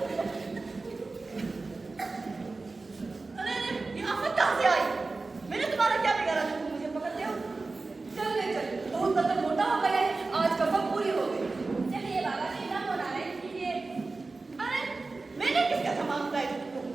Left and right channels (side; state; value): left; quieter; 3.7 dB